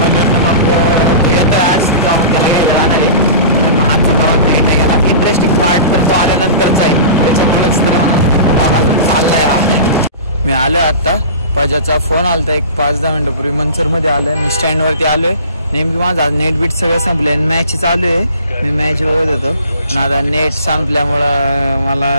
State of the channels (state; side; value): inverted; both; correlation -0.38